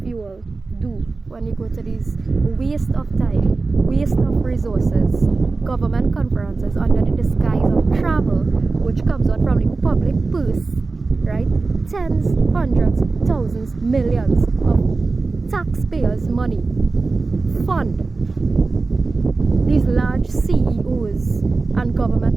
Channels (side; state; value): left; quieter; 3.8 dB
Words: you all do when you go to these waste of time, waste of resources, government conferences under the disguise of travel, which comes out from the public purse, right? Tens, hundreds, thousands, millions of taxpayers' money fund these large CEOs and